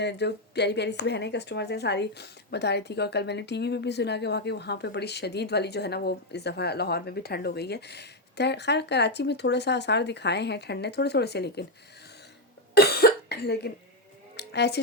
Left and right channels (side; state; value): both; normal; correlation 0.05